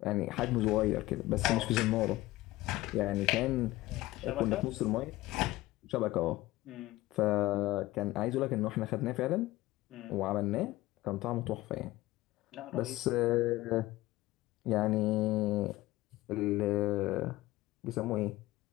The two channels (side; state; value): right; quieter; 17.8 dB